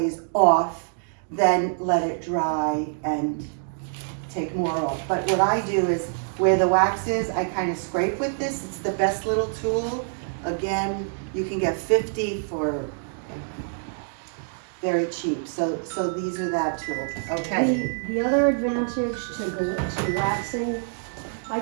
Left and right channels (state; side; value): silent; left; digital silence